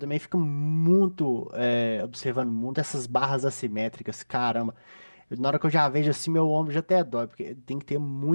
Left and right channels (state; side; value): inverted; both; correlation -1.00